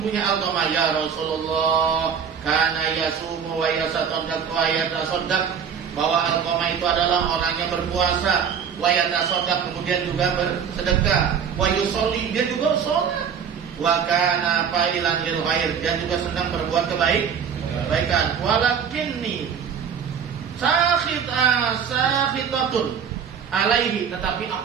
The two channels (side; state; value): left; quieter; 7.3 dB